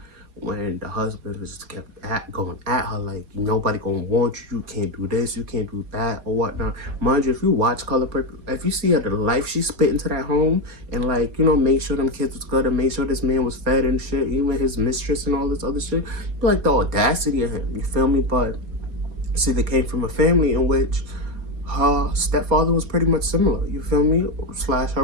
when the husband was just kept going at her, like, nobody gonna want you. You can't do this. You can't do that or whatnot. Mind you, if you watch Color Purple, if you see her the life she spit into that home and like, you know, made sure them kids was good and made sure this man was fed and shit, even his mistress and all this other shit, like the audacity of him. You feel me? But see, they came from a family in which her stepfather was pretty much similar. You feel me? Slash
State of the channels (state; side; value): late; left; 4.3 ms